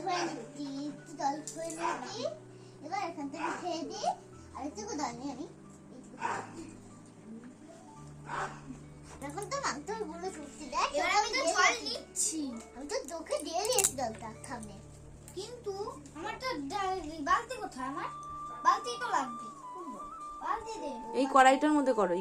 করে নিচ্ছি, একটু দল করে নিচ্ছি। এবার এখান থেকে খেয়ে দিই, আর একটু দল নিয়ে আমি এখন তো মাংস গুলো ফুটছে। দেখ এবার আমি তো জল নিচ্ছি, আমি তো চোখে দিয়ে দিয়েছি জলটা সামনে, কিন্তু আমার তো বালতি কোথায়? আমার বালতি তো লাগবে। বালতি দে, এই কড়াইটার মধ্যে করো,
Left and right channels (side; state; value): both; identical; correlation 1.00